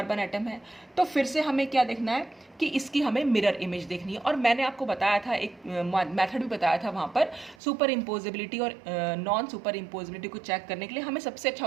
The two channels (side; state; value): left; drops out; at 7.6 s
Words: एटम है। तो फिर से हमें क्या देखना है कि इसकी हमें मिरर इमेज देखनी है। और मैंने आपको बताया था, एक मेथड भी बताया था वहाँ पर, सुपर इम्पोजिबिलिटी और नॉन सुपर इम्पोजिबिलिटी को चेक करने के लिए हमें सबसे अच्छा